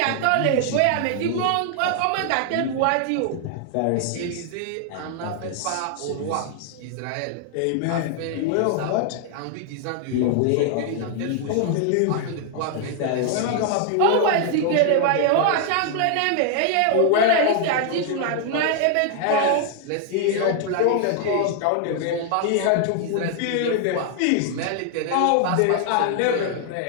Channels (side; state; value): both; different; correlation 0.00